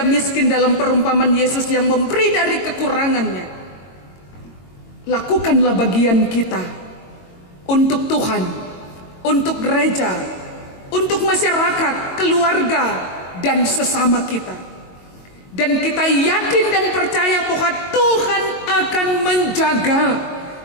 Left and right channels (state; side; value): late; right; 22 ms